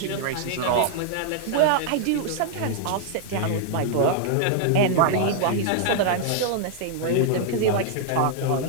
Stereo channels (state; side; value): different; both; correlation -0.01